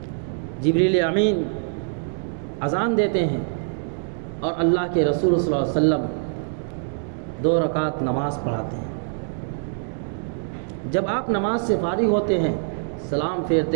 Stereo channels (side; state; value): left; silent; digital silence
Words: جبریل امین اذان دیتے ہیں اور اللہ کے رسول صلی اللہ علیہ وسلم 2 رکعت نماز پڑھاتے ہیں۔ جب آپ نماز سے فارغ ہوتے ہیں سلام